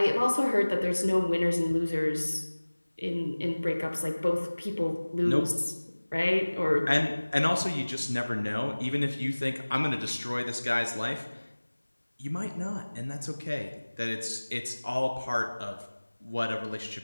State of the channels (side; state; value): both; inverted; correlation -1.00